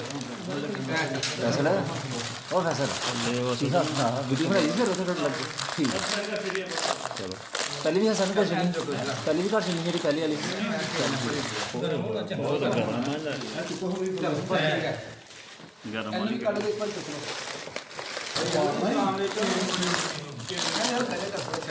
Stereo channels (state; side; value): identical; both; correlation 1.00